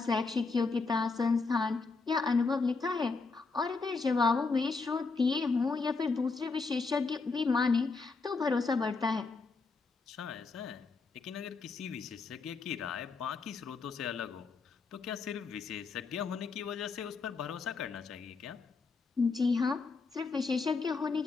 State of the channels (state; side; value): quieter; right; 4.3 dB